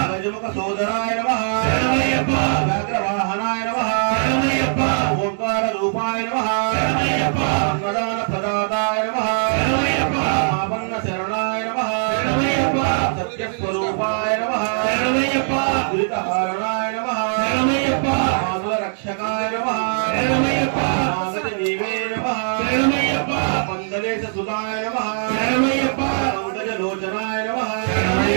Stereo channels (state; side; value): silent; left; digital silence